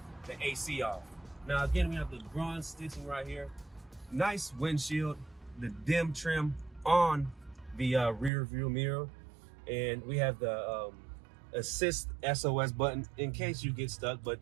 AC off. Now again, we have the bronze stitching right here. Nice windshield, the dim trim on the rear view mirror, and we have the assist SOS button in case you get stuck. But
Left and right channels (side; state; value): left; drops out; at 8.3 s